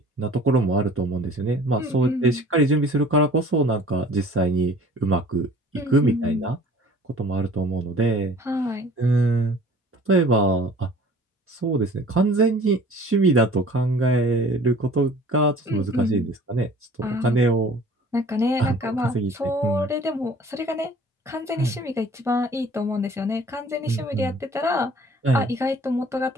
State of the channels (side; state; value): both; normal; correlation 0.49